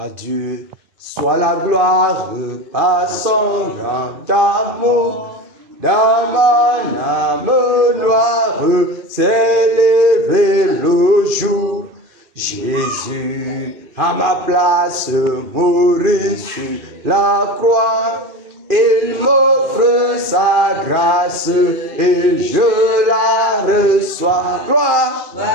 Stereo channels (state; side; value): late; left; 2.5 ms